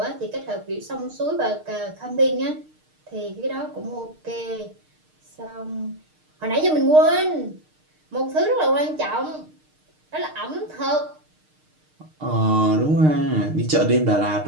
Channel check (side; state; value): left; late; 6.5 ms